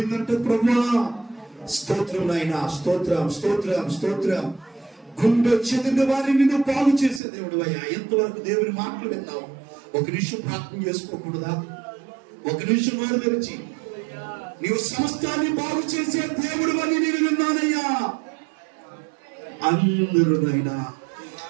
ప్రభువా స్తోత్రం నాయన. స్తోత్రం స్తోత్రం స్తోత్రం. గుండె చెదిరిన వారిని నువ్వు బాగు చేసే దేవుడు అయ్యా. ఎంతవరకు దేవుని మాటలు విన్నావు? ఒక నిమిషం ప్రార్థన చేసుకోకూడదా? ఒక నిమిషం నోరు తెరిచి, నీవు సమస్తాన్ని బాగు చేసే దేవుడు అని నేను విన్నానయ్యా. అందరూ నాయనా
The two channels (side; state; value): left; drops out; at 7.2 s